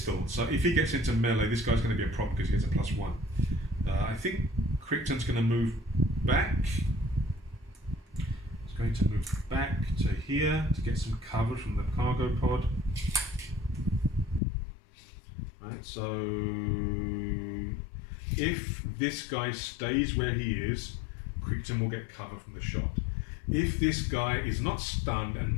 so if he gets into melee, this guy's going to be a problem because he gets a +1. I think Crichton's going to move back. He's going to move back to here to get some cover from the cargo pod. Right, so if this guy stays where he is, Crichton will get cover from the shot. If this guy is not stunned and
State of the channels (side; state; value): right; drops out; at 14.4 s